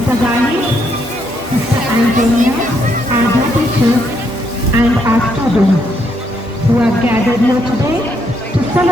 Gali, Sister Antonia, our dear teachers, and our students who are gathered here today to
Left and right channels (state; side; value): normal; both; correlation 0.75